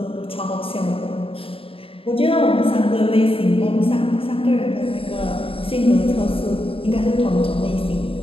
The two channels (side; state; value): right; late; 0.27 ms